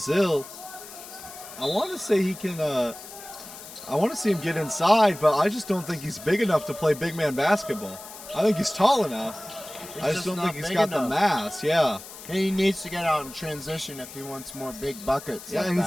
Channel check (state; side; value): noise; left; hiss, 15 dB below the sound